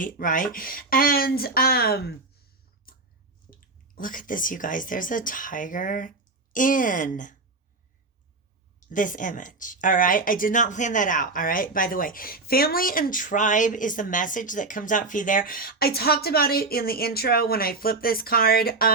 right? And look at this, you guys. There's a tiger in this image. All right. I did not plan that out. All right. By the way, family and tribe is the message that comes out for you there. I talked about it in the intro when I flipped this card.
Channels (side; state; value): left; quieter; 3.6 dB